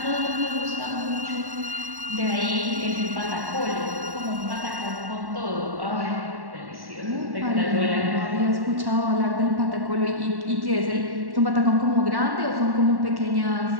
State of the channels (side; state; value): left; late; 1.1 ms